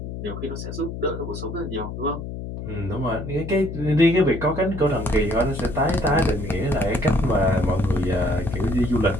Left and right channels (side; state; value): left; noise; hum, 8 dB below the sound